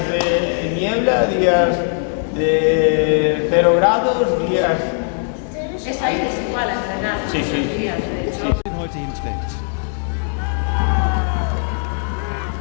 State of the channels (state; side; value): silent; right; 66 dB below the other